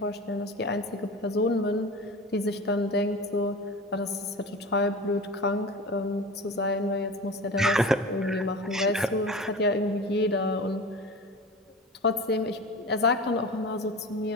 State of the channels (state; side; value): normal; both; correlation 0.33